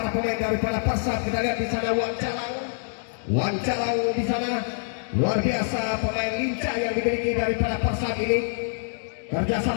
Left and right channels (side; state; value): right; silent; digital silence